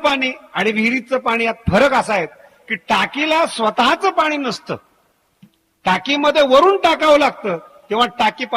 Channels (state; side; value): identical; both; correlation 1.00